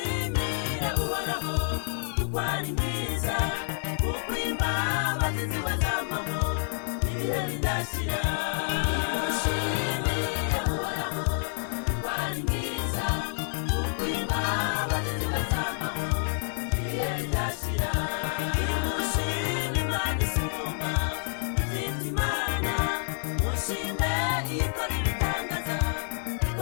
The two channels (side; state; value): right; silent; digital silence